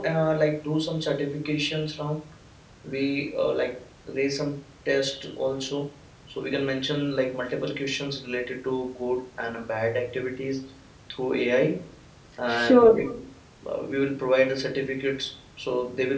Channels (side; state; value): both; identical; correlation 1.00